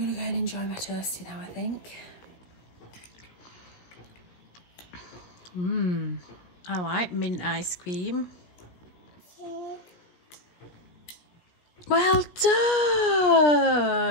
gonna go and enjoy my toasty now, I think. I like mint ice cream. Well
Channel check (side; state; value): right; late; 17 ms